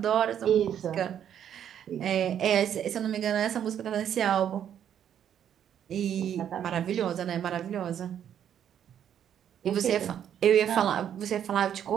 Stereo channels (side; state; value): left; quieter; 9.5 dB